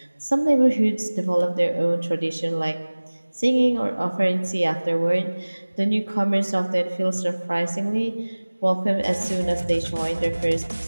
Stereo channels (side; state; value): both; inverted; correlation -1.00